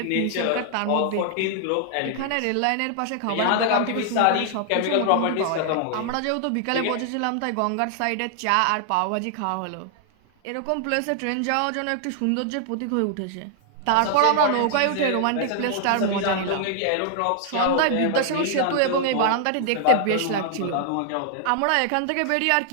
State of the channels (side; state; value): both; different; correlation 0.00